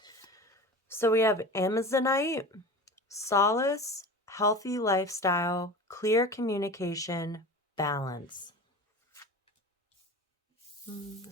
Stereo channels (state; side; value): normal; both; correlation 0.33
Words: So we have Amazonite, solace, healthy lifestyle, clear communication, balance.